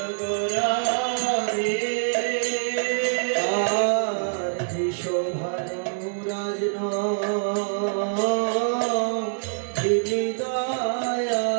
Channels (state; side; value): silent; left; digital silence